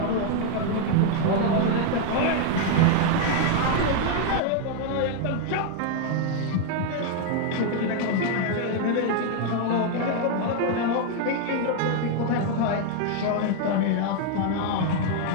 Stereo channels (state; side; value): different; both; correlation 0.00